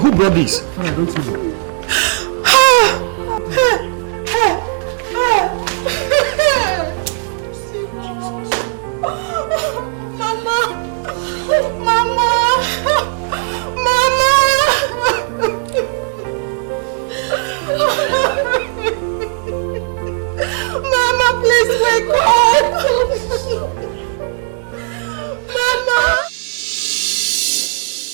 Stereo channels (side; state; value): left; silent; 69 dB below the other